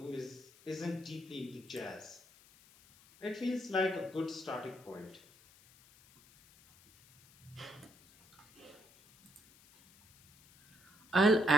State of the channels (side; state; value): left; noise; hiss, 26 dB below the sound